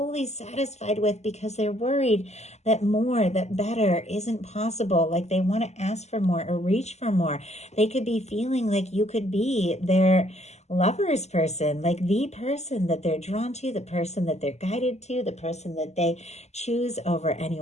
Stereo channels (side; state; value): right; late; 0.32 ms